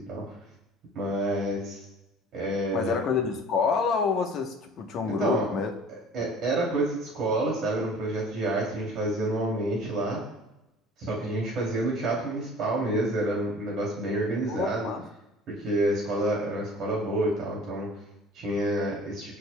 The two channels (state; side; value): normal; both; correlation 0.46